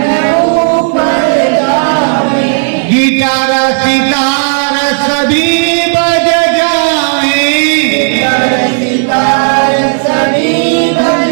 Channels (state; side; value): silent; left; digital silence